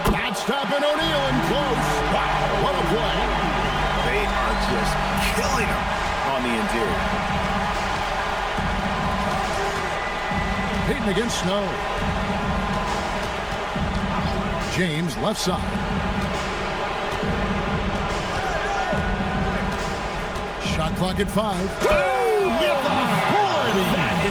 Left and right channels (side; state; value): both; identical; correlation 1.00